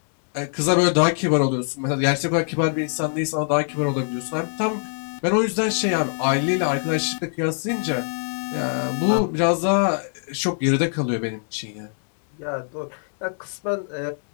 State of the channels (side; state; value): right; silent; 63 dB below the other